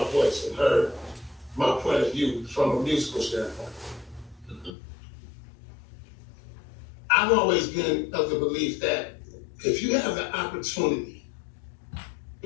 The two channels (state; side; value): drops out; right; at 4.7 s